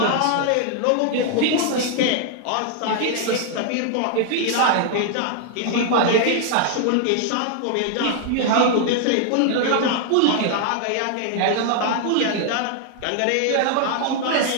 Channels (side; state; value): both; different; correlation 0.00